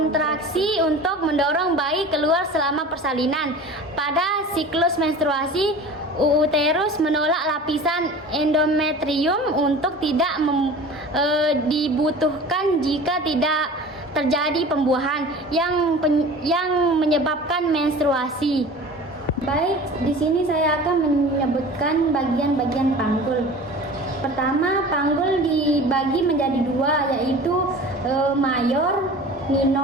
untuk mendorong bayi keluar selama persalinan. Pada siklus menstruasi, uterus menolak lapisan endometrium untuk tidak dibutuhkan jika tidak terjadi pembuahan yang menyebabkan menstruasi. Baik, di sini saya akan menyebutkan bagian-bagian panggul. Pertama, panggul dibagi menjadi dua, yaitu mayor,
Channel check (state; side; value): normal; both; correlation 0.39